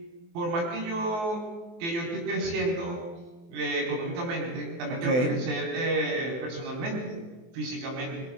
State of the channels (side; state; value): left; late; 23 ms